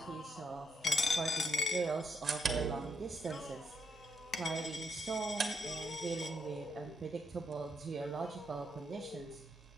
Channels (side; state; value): both; normal; correlation 0.77